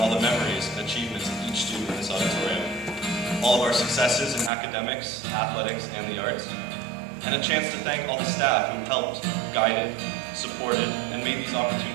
the memories and achievements of each student in this auditorium. All of our successes in academics, athletics, and the arts, and a chance to thank all the staff who helped, guided, supported, and made these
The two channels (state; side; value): drops out; left; at 4.5 s